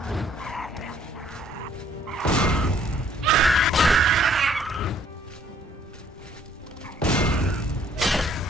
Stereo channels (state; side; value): normal; both; correlation 0.63